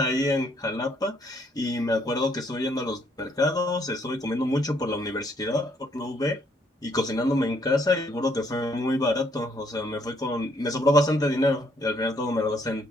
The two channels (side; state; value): both; normal; correlation 0.68